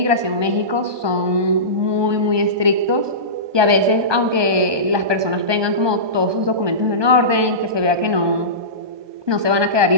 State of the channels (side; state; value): left; late; 1.2 ms